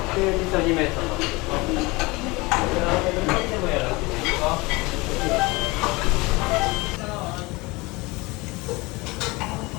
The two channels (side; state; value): right; quieter; 24.0 dB